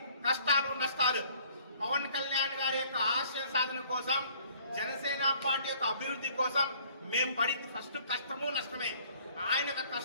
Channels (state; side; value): inverted; both; correlation -0.57